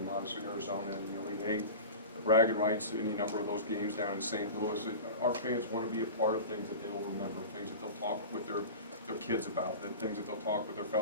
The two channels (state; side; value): inverted; both; correlation -0.32